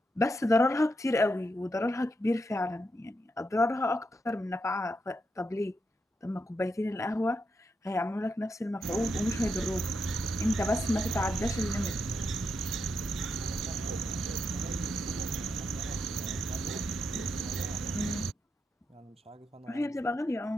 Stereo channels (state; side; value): normal; both; correlation 0.83